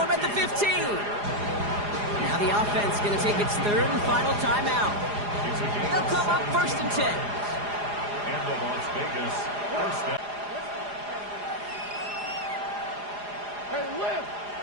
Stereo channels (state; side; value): late; left; 4.9 ms